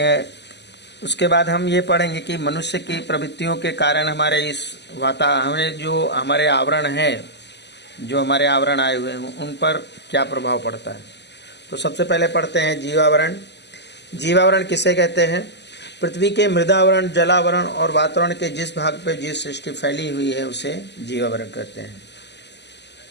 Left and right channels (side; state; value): right; late; 0.50 ms